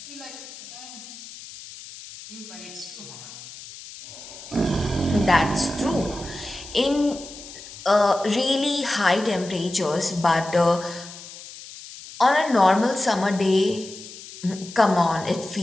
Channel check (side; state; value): left; noise; hiss, 15 dB below the sound